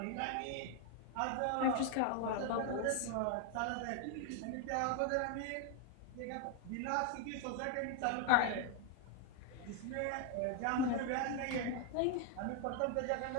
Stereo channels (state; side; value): different; both; correlation 0.01